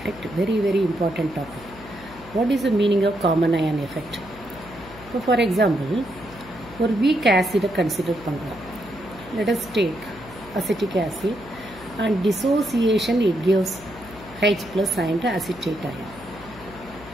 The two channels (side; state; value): left; noise; hum, 18 dB below the sound